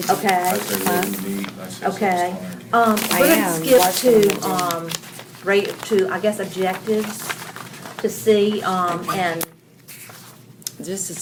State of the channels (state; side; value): identical; both; correlation 1.00